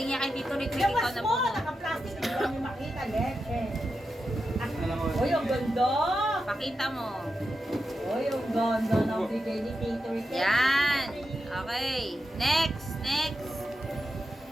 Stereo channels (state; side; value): normal; both; correlation 0.88